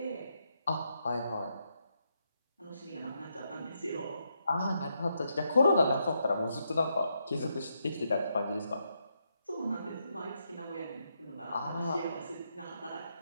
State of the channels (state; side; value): inverted; both; correlation -0.80